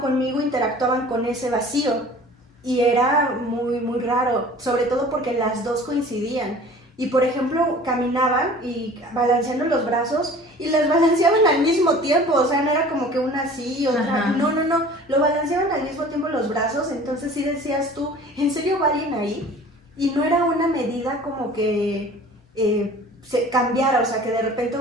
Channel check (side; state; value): both; normal; correlation 0.45